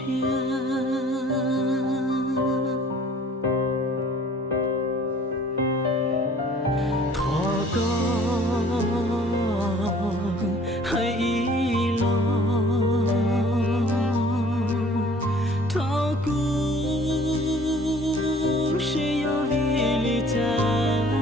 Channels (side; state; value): both; normal; correlation 0.53